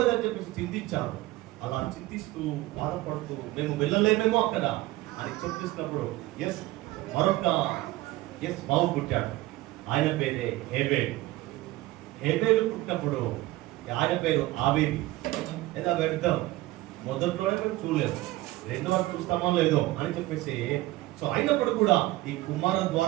చెప్పేసి చింతించారు. అలా చింతిస్తూ బాధపడుతూ మేము వెళ్ళలేమేమో అక్కడ అని చెప్పిస్తున్నప్పుడు మరొక బాబు పుట్టాడు. ఆయన పేరే హేబేలు. హేబేలు పుట్టినప్పుడు ఆయన పేరు ఆబేలు. లేదా వెళ్దాం, మొదట్లోనే మేము చూడలేదు, రెండో వరకు చూస్తామో లేదో అని చెప్పేసి సో అయినప్పుడు కూడా ఈ కుమారుల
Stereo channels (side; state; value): left; quieter; 18.1 dB